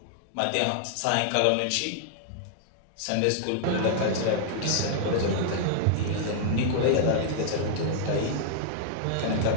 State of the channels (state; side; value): different; both; correlation -0.01